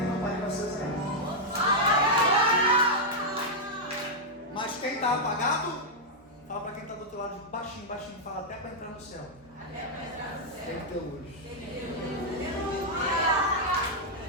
não vai ser zero. Mas quem está apagado, fala para quem está do outro lado, baixinho, baixinho, fala até para entrar no céu. Tem que ter luz.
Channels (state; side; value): normal; both; correlation -0.04